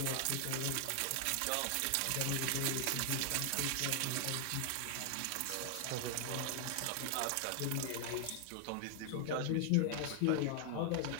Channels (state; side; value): different; both; correlation 0.00